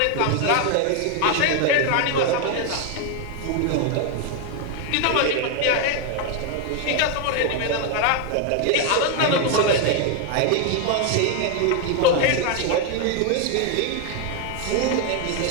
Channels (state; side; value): different; both; correlation 0.01